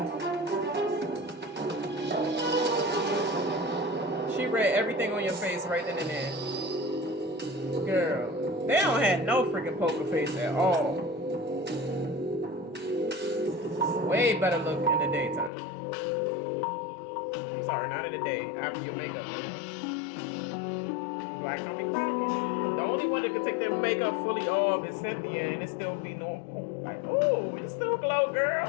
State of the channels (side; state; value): right; drops out; at 15.5 s